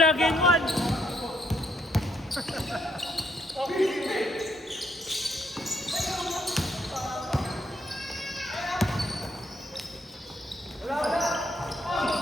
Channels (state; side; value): normal; both; correlation 0.73